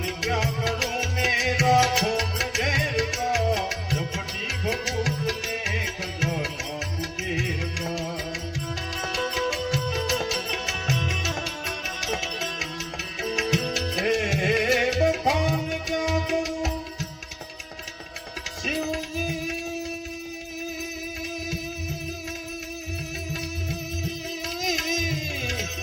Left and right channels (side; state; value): both; identical; correlation 1.00